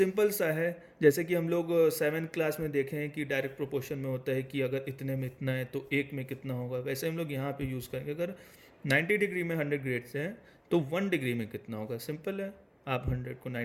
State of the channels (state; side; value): identical; both; correlation 1.00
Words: सा है, जैसे कि हम लोग 7th क्लास में देखे हैं कि डायरेक्ट प्रोपोर्शन में होता है कि अगर इतने में इतना है तो एक में कितना होगा, वैसे हम लोग यहाँ पे यूज़ करेंगे। अगर 90 डिग्री में 100 ग्रेड्स हैं तो 1 डिग्री में कितना होगा, सिंपल है, आप 100 को